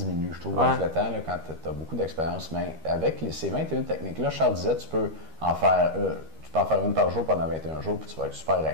je trouve, avec le temps, là, quand tu as beaucoup d'expérience. Mais avec ces 21 techniques-là, Charles disait, tu peux en faire une par jour pendant 21 jours, puis tu vas être super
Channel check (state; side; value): late; left; 13 ms